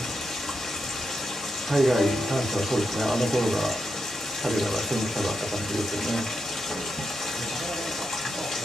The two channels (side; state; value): both; normal; correlation 0.85